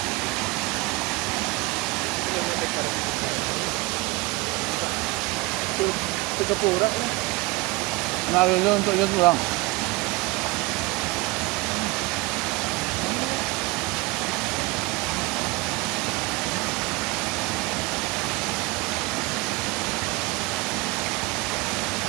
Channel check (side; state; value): left; quieter; 23.1 dB